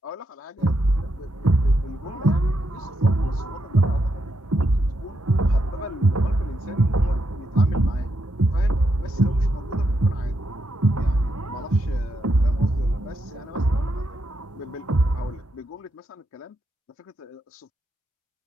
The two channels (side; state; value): both; normal; correlation 0.83